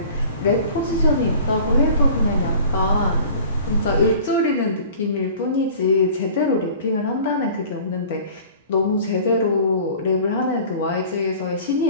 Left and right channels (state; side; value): inverted; both; correlation -0.45